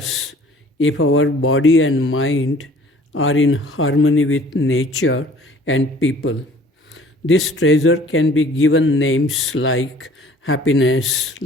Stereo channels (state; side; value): normal; both; correlation 0.52